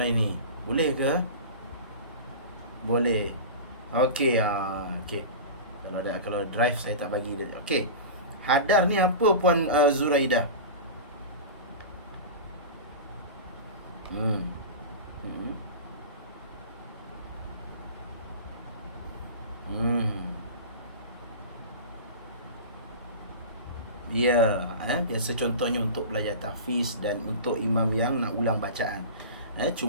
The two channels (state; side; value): inverted; both; correlation -0.31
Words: Boleh ke? Boleh. Okey, okey. Kalau drive saya tak bagi dia. Okey. Hadar ni apa Puan Zuraidah? Ya, biasa contohnya untuk belajar tahfiz dan untuk imam yang nak ulang bacaan.